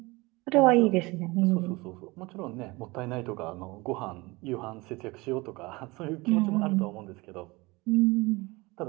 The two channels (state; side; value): quieter; left; 23.4 dB